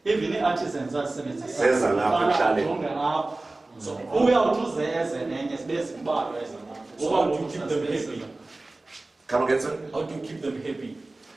Even artisans are Senza lapha ekuhlale. So uyawuthi eze nenye sibese kubalwa eza. So how do you keep them happy? Come again, sir? How do you keep them happy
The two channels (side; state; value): left; quieter; 3.0 dB